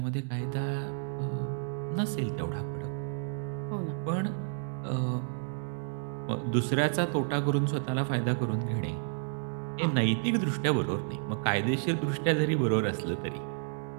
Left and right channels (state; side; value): silent; left; digital silence